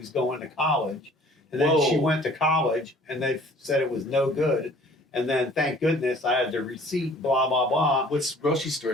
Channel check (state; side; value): normal; both; correlation 0.52